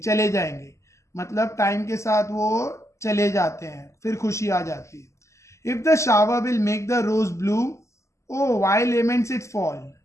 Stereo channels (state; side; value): late; right; 0.14 ms